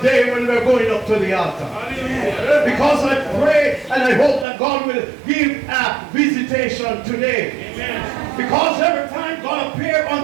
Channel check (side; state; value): left; drops out; at 4.5 s